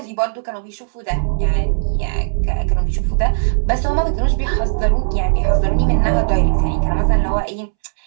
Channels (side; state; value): left; silent; 68 dB below the other